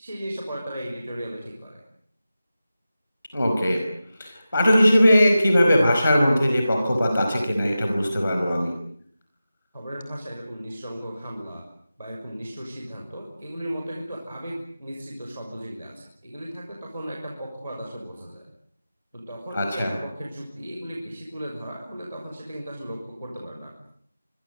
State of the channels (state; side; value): inverted; both; correlation -0.94